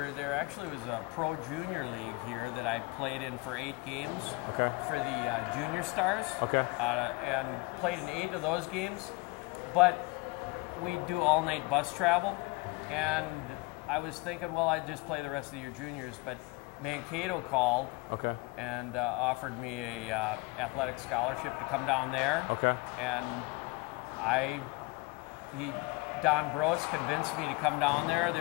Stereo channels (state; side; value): quieter; right; 25.0 dB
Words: There actually was a pro junior league here that I played in for 8 games. Okay. For the junior stars. Okay. And played in 8 of those games. But we do all-night bus travel, and I was thinking, well, I'd just play the rest of the year juniors, but Mankato called and offered me a athletic scholarship to come down there. Okay. And Don Bros convinced me to come down there.